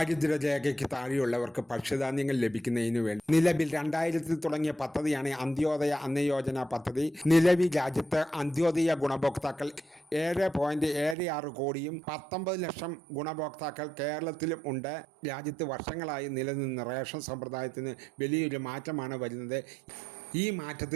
താഴെയുള്ളവർക്ക് ഭക്ഷ്യധാന്യങ്ങൾ ലഭിക്കുന്നതിന് വേണ്ടി നിലവിൽ 2000 തുടങ്ങിയ പദ്ധതിയാണ് അന്ത്യോദയ അന്നയോജന പദ്ധതി. നിലവിൽ രാജ്യത്ത് അന്ത്യോദയ ഗുണഭോക്താക്കൾ 7.76 കോടിയും 19 ലക്ഷം ഗുണഭോക്താക്കൾ കേരളത്തിലും ഉണ്ട്. രാജ്യത്ത് വർഷങ്ങളായി നിലനിന്ന റേഷൻ സമ്പ്രദായത്തിന് വലിയൊരു മാറ്റമാണ് വരുന്നത്. ഈ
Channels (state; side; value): drops out; left; at 11.2 s